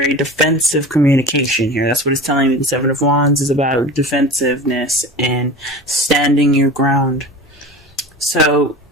defensive communication here. That's what it's telling me. The 7 of Wands is about defensiveness and standing your ground. So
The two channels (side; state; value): both; normal; correlation 0.34